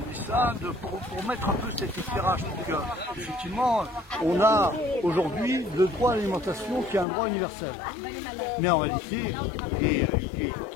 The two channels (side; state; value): right; drops out; at 7.1 s